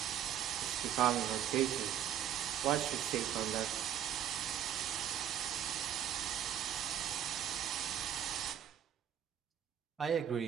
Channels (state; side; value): quieter; left; 10.2 dB